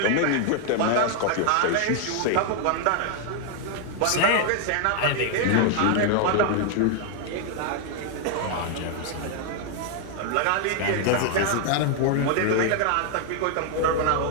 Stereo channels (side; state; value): both; different; correlation 0.00